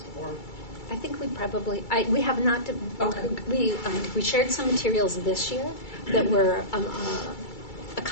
or? I think we have not. Okay. We shared some materials this year that were a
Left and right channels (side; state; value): right; late; 2.3 ms